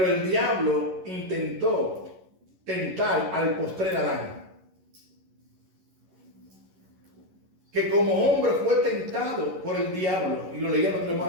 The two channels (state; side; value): late; left; 11 ms